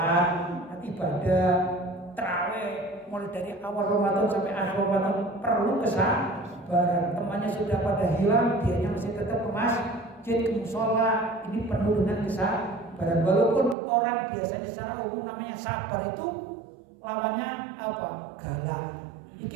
ibadah, tarawih, mulai dari awal Ramadan sampai akhir Ramadan perlu kesabaran. Temannya sudah pada hilang, dianya masih tetap ke masjid, ke musola. Ini penuh dengan kesabaran. Walaupun orang biasanya secara umum namanya sabar itu lawannya apa? Galak.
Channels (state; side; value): drops out; left; at 13.8 s